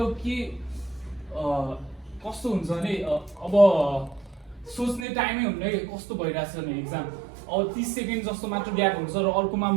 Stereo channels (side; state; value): left; drops out; at 5.1 s